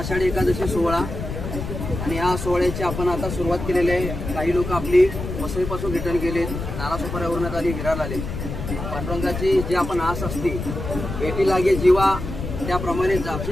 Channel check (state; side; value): noise; left; rumble, 6 dB below the sound